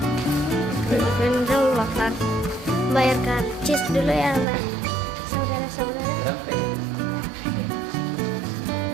Rendang bakar. Bayar karcis dulu ya, Bay. Saudara-saudara.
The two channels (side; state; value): left; drops out; at 4.5 s